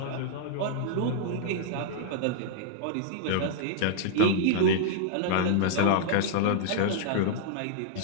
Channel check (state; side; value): different; both; correlation -0.01